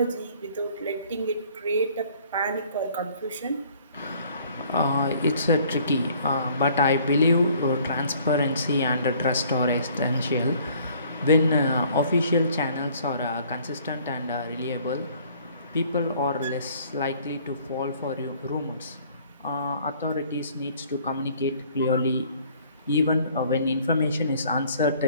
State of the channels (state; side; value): inverted; both; correlation -0.57